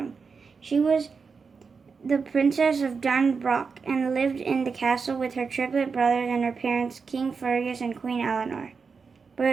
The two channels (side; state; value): left; quieter; 5.2 dB